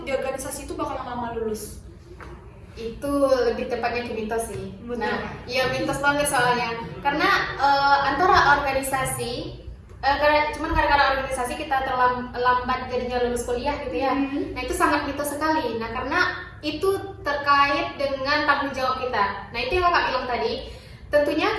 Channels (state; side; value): identical; both; correlation 1.00